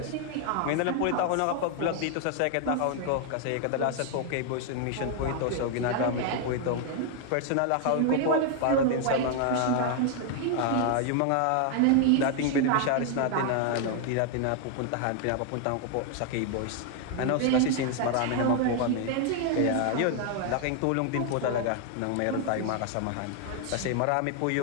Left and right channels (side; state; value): both; different; correlation 0.00